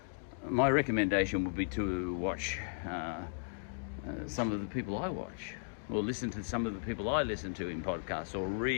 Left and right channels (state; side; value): silent; right; digital silence